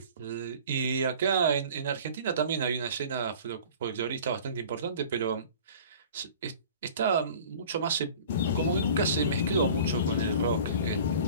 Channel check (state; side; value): inverted; both; correlation -0.43